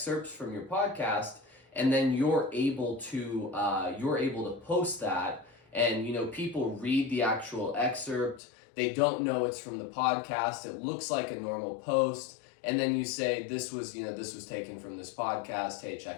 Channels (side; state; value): right; drops out; at 8.4 s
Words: from your podcast and then you're able to post that, and you know, people read the actual excerpt, they don't know it's from the podcast, it looks like a normal post, and then you say this was taken from this podcast, hey,